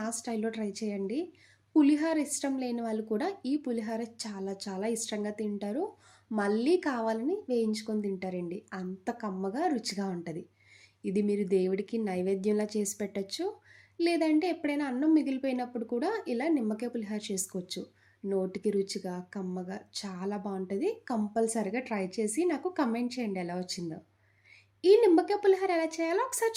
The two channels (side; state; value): both; identical; correlation 1.00